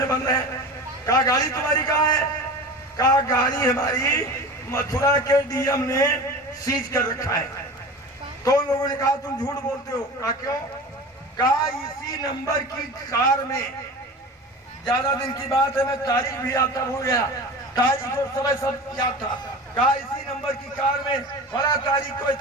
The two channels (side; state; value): both; normal; correlation 0.34